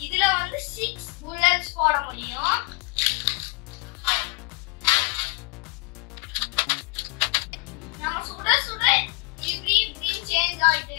இதுல வந்து 6 bullets போட முடியும். நம்ம சுட சுட இப்படி சேஞ்ச் ஆயிட்டே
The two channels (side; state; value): right; quieter; 31.6 dB